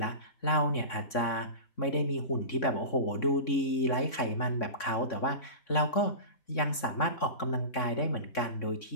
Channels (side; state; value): right; late; 3.6 ms